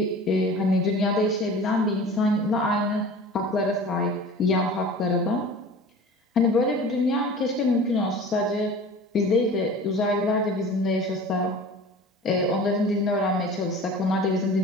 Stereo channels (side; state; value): both; normal; correlation 0.40